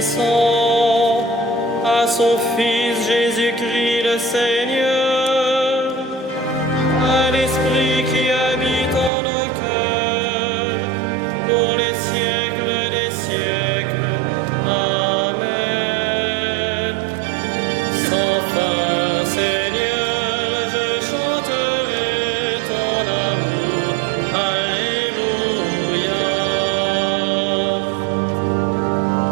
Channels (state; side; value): drops out; left; at 9.1 s